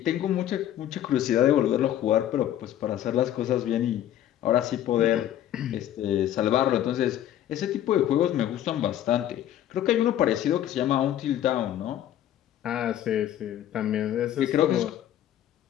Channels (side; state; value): right; quieter; 11.7 dB